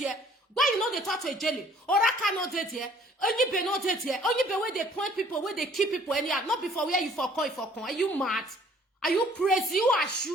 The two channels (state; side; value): normal; both; correlation 0.57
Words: Why you know they talk to Ijele? Oraka not dead here. Onyibe not dead here. Onyibe where they point people, where they keep people, and not before where you for coin. Are you mad? Are you crazy? You are